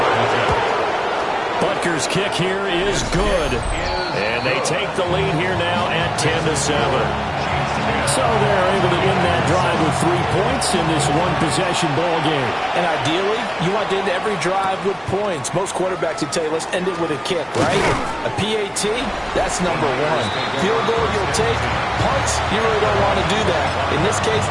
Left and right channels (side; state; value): both; identical; correlation 1.00